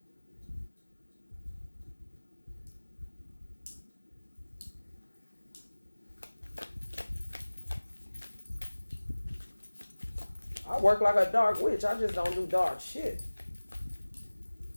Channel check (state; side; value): inverted; both; correlation -1.00